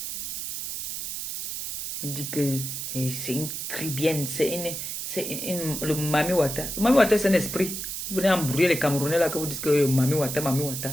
Il dit que c'est une cribienne, le Mami Wata. Le Mami Wata, c'est un esprit. Vous venez embrouiller les Camerounais là que vous dites que Mami Wata, Mami Wata.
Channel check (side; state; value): right; noise; hiss, 5 dB below the sound